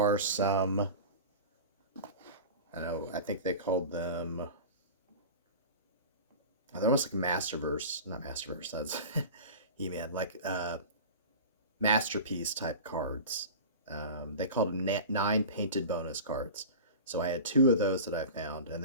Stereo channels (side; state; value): both; inverted; correlation -0.33